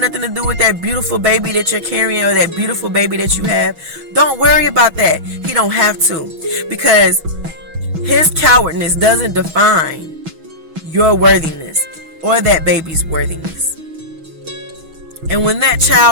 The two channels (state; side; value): late; left; 6.2 ms